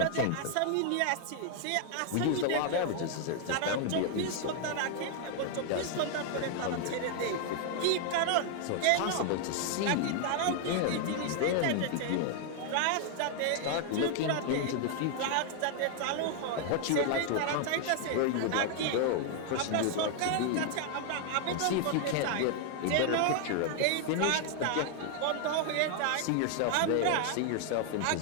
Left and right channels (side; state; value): both; different; correlation 0.00